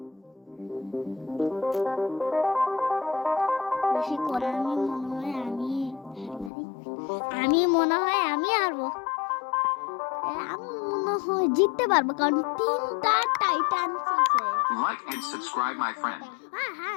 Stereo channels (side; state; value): right; drops out; at 6.5 s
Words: বেশি করে আমি মনে হয় আমি হারবো। আমি মনে হয় জিততে পারবো, কারণ 3টা টাইটান্স আছে। Like and subscribe my friend. হ্যাঁ,